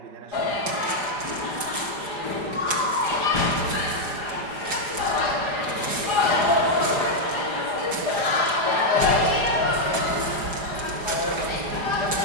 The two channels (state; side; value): late; left; 5.1 ms